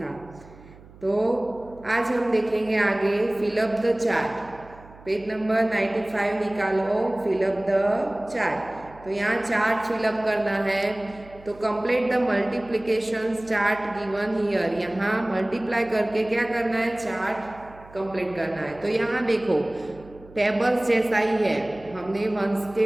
तो आज हम देखेंगे आगे fill up the chart. Page number 95 निकालो, फिलअप द चार्ट। तो यहाँ चार्ट फिलअप करना है। तो complete the multiplication chart given here. यहाँ मल्टीप्लाई करके क्या करना है, चार्ट कंप्लीट करना है। तो यहाँ देखो टेबल्स जैसा ही है। हमने 1 से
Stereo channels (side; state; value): right; noise; hum, 22 dB below the sound